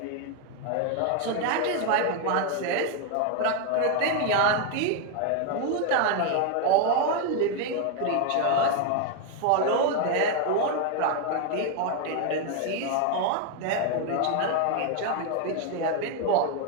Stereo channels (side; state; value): both; different; correlation 0.01